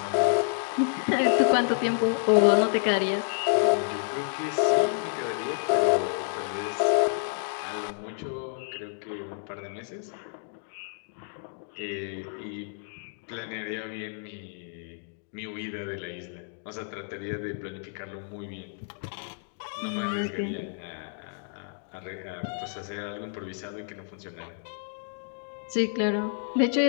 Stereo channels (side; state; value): right; silent; digital silence